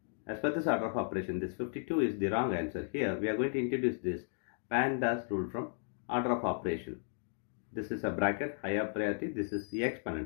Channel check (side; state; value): right; silent; digital silence